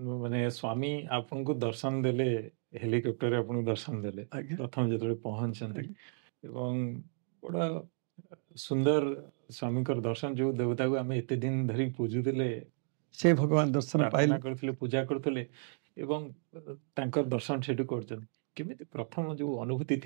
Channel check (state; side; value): silent; left; 55 dB below the other